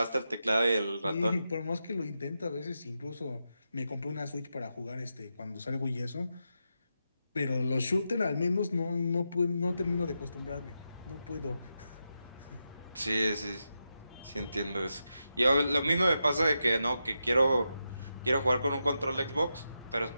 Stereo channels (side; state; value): both; inverted; correlation -0.87